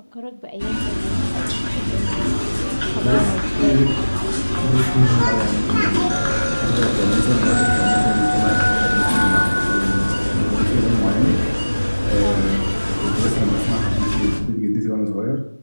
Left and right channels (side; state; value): both; inverted; correlation -1.00